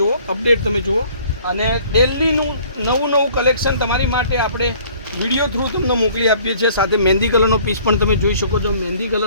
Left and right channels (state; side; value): inverted; both; correlation -0.55